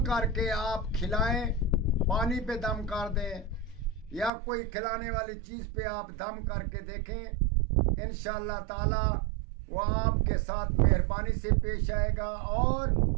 کر کے آپ کھلائیں، پانی پہ دم کر دیں یا کوئی کھلانے والی چیز پہ آپ دم کر کے دیکھیں، انشاءاللہ تعالی وہ آپ کے ساتھ مہربانی سے پیش آئے گا اور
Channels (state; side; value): drops out; left; at 4.3 s